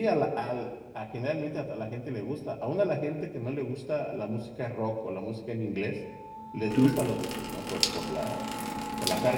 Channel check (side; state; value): both; identical; correlation 1.00